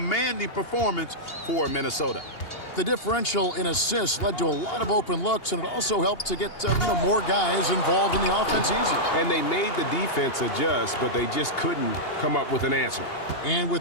performance for Minnesota. The differential in assists led to a lot of open looks, and it also helped to get more guys involved in the offense easy. And they made the defense adjust, but they just couldn't come up with an answer. And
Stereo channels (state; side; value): late; right; 2.8 ms